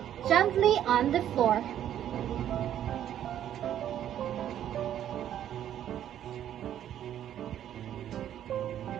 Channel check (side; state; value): left; quieter; 10.8 dB